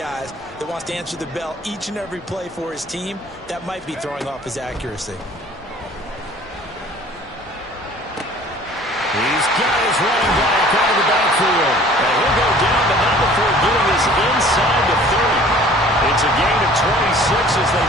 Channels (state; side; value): normal; both; correlation 0.50